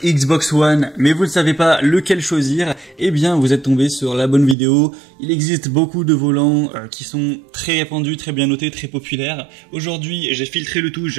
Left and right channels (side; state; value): left; drops out; at 4.5 s